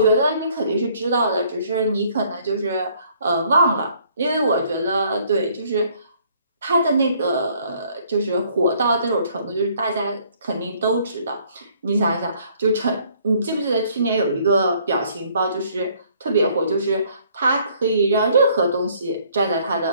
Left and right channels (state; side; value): inverted; both; correlation -0.62